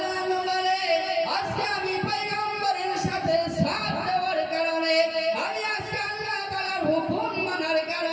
আনহু বলে, আজকে আমি পয়গম্বরের সাথে সাথ দেওয়ার কারণে, আমি আজকে আল্লাহ তাআলার হুকুম মানার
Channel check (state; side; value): identical; both; correlation 1.00